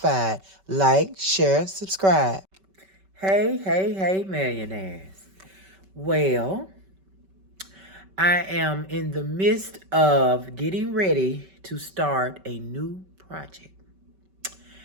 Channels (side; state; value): left; late; 5.2 ms